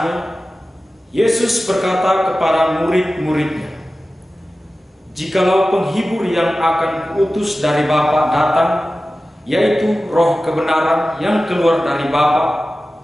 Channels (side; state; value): both; normal; correlation 0.95